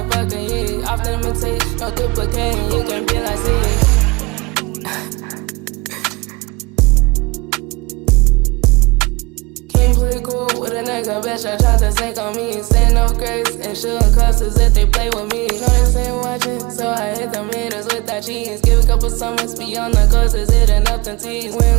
heat. Often imitate, no duplicating, you can be like C. Can't play cool with a nigga, bitch, I tried to sink on me. Saying no grace and shooting clusters if they play with me. Know they ain't watching, so I hit them haters with that cheese. Give a couple summers beyond the coasters, hitting up them tees.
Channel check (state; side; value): quieter; left; 25.0 dB